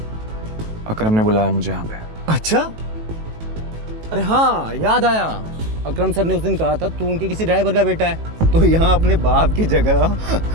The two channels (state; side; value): late; left; 18 ms